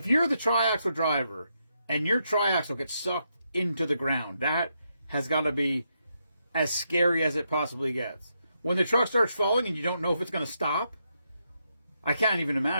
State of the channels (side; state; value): both; inverted; correlation -0.81